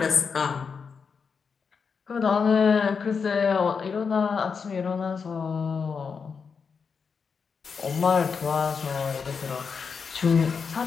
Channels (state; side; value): quieter; right; 5.7 dB